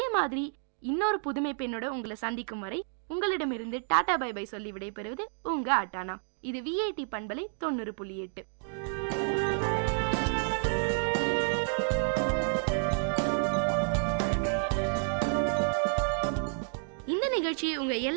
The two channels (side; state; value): left; silent; digital silence